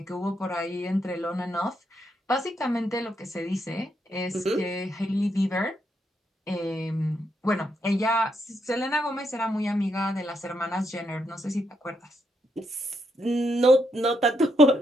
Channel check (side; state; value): both; normal; correlation 0.79